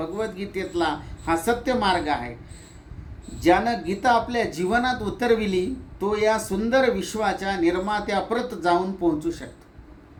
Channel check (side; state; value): both; identical; correlation 1.00